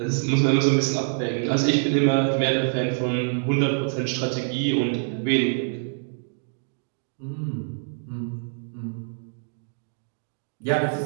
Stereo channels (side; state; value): left; silent; digital silence